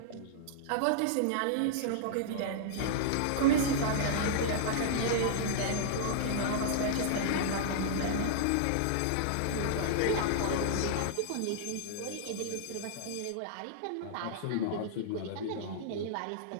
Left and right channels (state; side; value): different; both; correlation -0.02